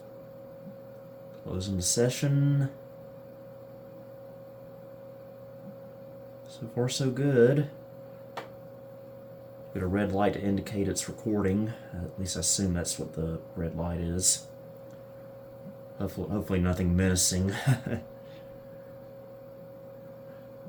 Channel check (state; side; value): identical; both; correlation 1.00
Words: Closing the session. So far, so good. Got a red light to indicate it's recording. At least I assume that's what the red light is. Hopefully nothing menacing.